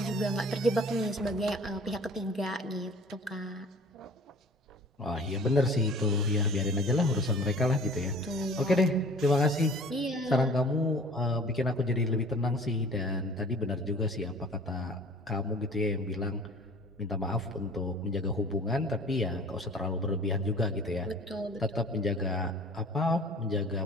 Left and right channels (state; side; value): normal; both; correlation 0.47